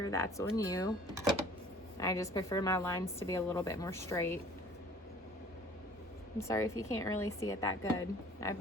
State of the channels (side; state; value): both; normal; correlation 0.51